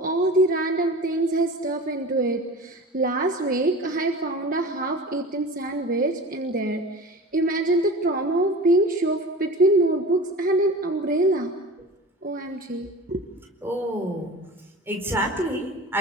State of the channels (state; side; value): normal; both; correlation 0.36